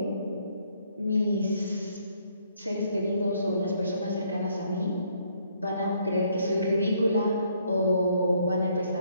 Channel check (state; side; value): inverted; both; correlation -0.68